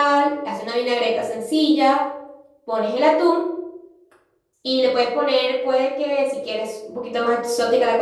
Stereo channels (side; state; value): both; identical; correlation 1.00